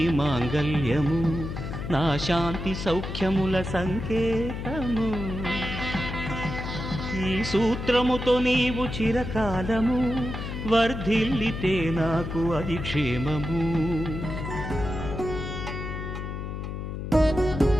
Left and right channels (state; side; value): noise; left; hum, 6 dB below the sound